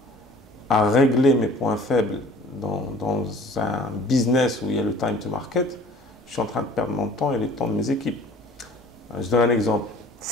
à régler mes points faibles dans un business où il y a le time to market, je suis en train de perdre mon temps et le temps de mes équipes. Je donne un exemple.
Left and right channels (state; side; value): normal; both; correlation 0.49